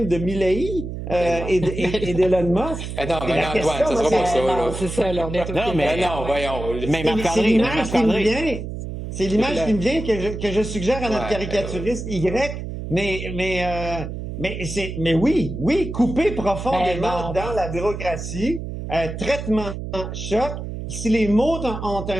de Milley et d'Elon Musk? Non, mais non, Antoine, ça sera pas ça. Non, c'est ça, là, on est Non, mais non, voyons. Mais c'est l'image qui me vient. C'est l'image qui me vient que je suggère à notre caricaturiste Y. Mais oui, couper profondément dans la bureaucratie, traitement choc. Si les mots ont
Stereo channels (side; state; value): right; noise; hum, 7 dB below the sound